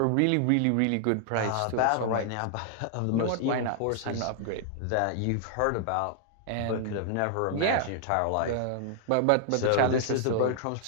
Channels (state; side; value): different; both; correlation -0.01